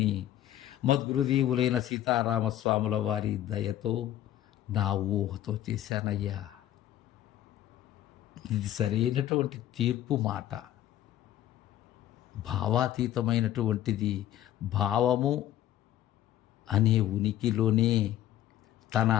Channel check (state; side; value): quieter; right; 12.6 dB